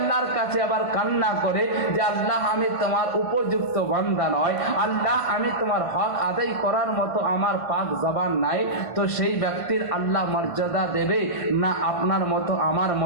কাছে আবার কান্না করে যে আল্লাহ আমি তোমার উপযুক্ত বান্দা নয়, আল্লাহ আমি তোমার হক আদায় করার মতো আমার পাক জবান নাই, তো সেই ব্যক্তির আল্লাহ মর্যাদা দেবে না আপনার মতো আমার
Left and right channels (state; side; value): late; right; 1.5 ms